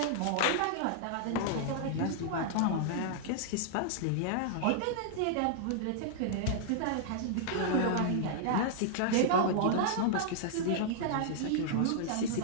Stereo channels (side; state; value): both; different; correlation -0.01